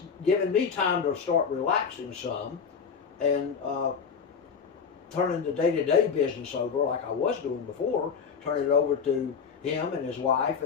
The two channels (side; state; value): right; quieter; 6.2 dB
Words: given me time to start relaxing some and turning the day-to-day business over like I was doing before, turning it over to him and his wife